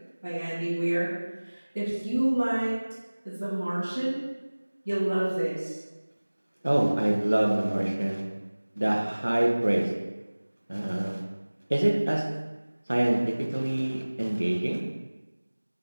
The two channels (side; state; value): both; inverted; correlation -1.00